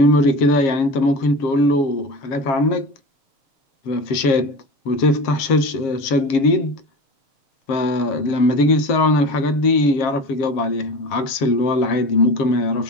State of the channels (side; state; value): right; late; 7.4 ms